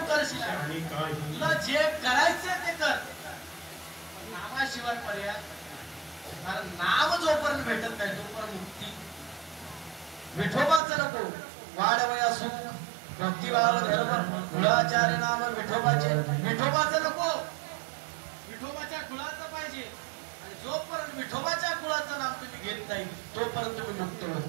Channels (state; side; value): drops out; left; at 10.8 s